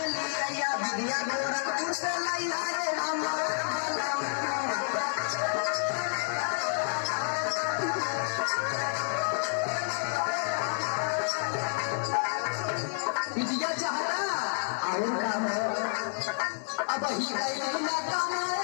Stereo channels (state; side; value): silent; right; 58 dB below the other